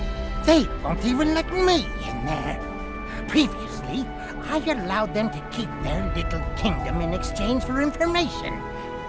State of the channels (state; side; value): identical; both; correlation 1.00